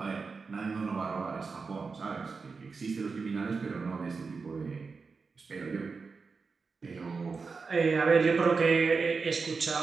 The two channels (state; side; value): quieter; left; 4.7 dB